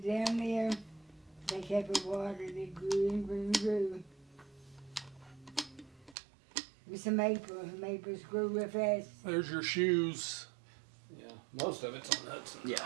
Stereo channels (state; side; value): drops out; left; at 6.2 s